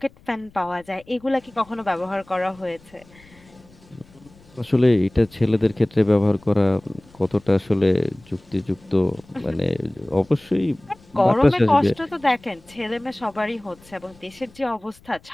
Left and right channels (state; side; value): noise; left; rumble, 27 dB below the sound